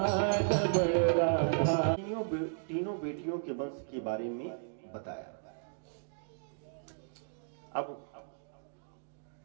तीनों बेटियों के वंश के बारे में बताया। अब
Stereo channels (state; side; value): silent; left; digital silence